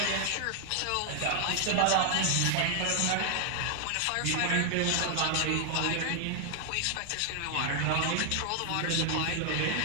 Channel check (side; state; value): both; different; correlation 0.00